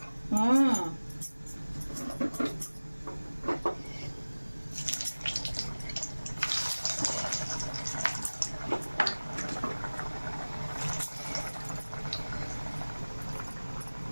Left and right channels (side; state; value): both; inverted; correlation -1.00